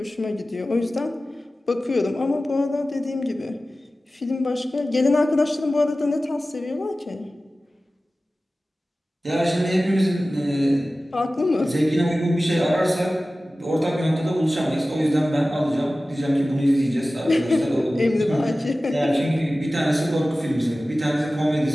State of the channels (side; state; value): both; normal; correlation 0.96